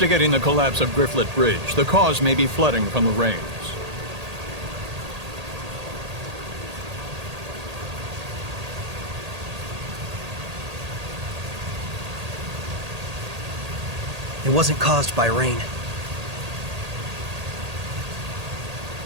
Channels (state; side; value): late; left; 1.8 ms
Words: the collapse of Grifflet Bridge. The cause may be flooding from the rains. It wasn't caused by rain.